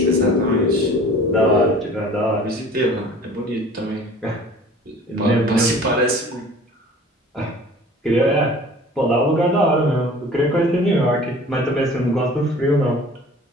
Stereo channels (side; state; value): both; normal; correlation 0.46